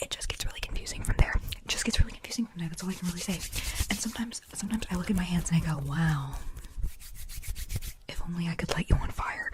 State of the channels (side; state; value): both; identical; correlation 1.00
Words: It just gets really confusing from there. That's all I can really say. And sometimes I look at my hands and I go, wow, if only I could light you on fire.